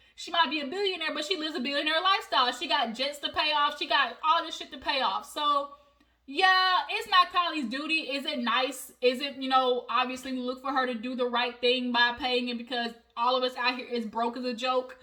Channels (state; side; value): identical; both; correlation 1.00